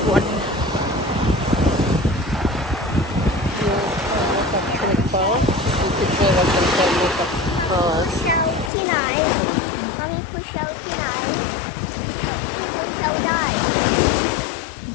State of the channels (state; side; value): drops out; right; at 8.7 s